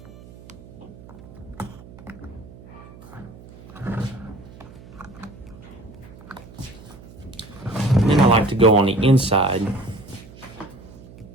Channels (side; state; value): right; noise; hum, 19 dB below the sound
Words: I like to go on the inside